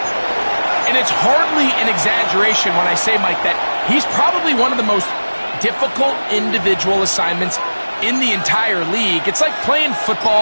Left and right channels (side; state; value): both; inverted; correlation -1.00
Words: And it's hardly an exaggeration when I say, Mike, that he's probably one of the most difficult individual assignments in the entire league. It's like playing